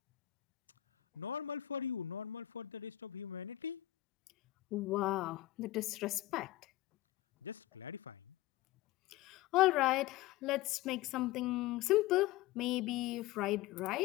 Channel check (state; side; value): quieter; right; 15.5 dB